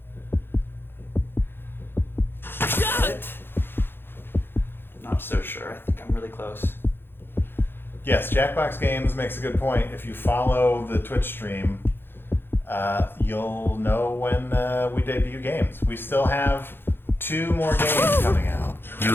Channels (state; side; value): late; right; 0.10 ms